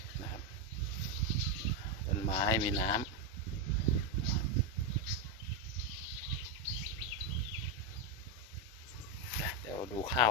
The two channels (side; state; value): both; normal; correlation 0.06